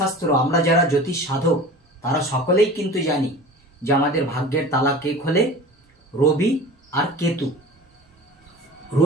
আমরা যারা জ্যোতিষ সাধক তারা সকলেই কিন্তু জানি যে আমাদের ভাগ্যের তালা কে খোলে? রবি আর কেতু।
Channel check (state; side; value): normal; both; correlation 0.38